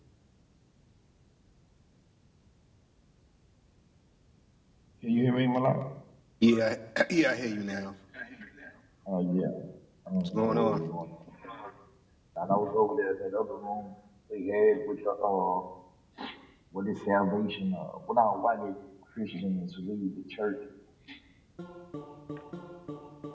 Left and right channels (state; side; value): identical; both; correlation 1.00